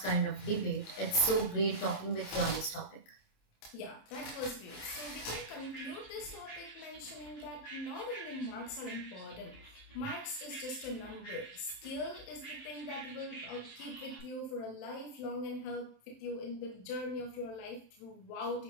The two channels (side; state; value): right; late; 27 ms